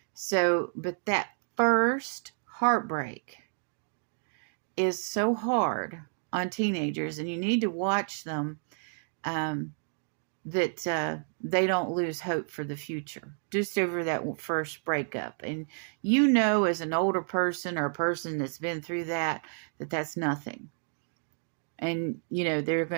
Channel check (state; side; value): silent; left; digital silence